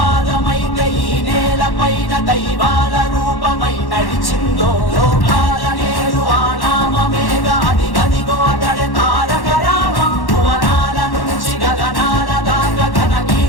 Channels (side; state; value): right; late; 1.1 ms